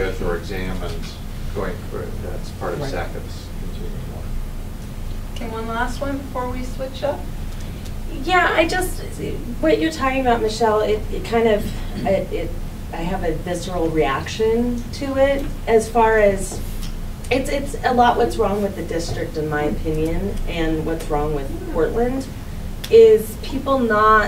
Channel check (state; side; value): identical; both; correlation 1.00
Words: or examined going forward. That's part of SACIP's continuing work. Okay, one last one before we switch up. Yeah, what you're talking about, Michelle, it kind of, I have a visceral reaction to it as far as, it's a lot what's wrong with the district in my opinion, and what's wrong with Portland, is people